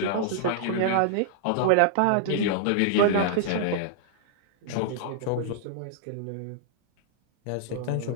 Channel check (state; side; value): different; both; correlation -0.01